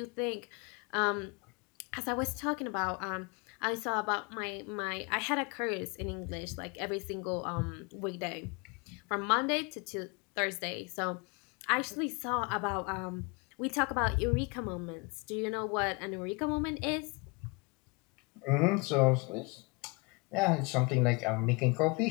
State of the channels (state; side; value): quieter; right; 29.2 dB